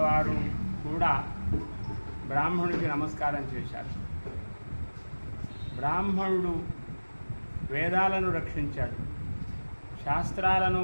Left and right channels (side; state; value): both; inverted; correlation -1.00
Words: వారు కూడా బ్రాహ్మణుడికి నమస్కారం చేశారు. బ్రాహ్మణుడు వేదాలను రక్షించాడు, శాస్త్రాలను,